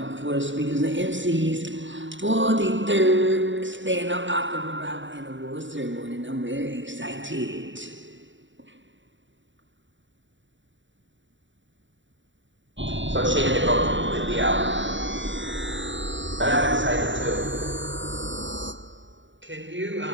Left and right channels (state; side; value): late; left; 0.55 ms